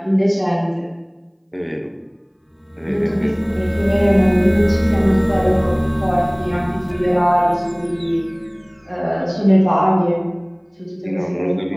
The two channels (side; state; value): both; identical; correlation 1.00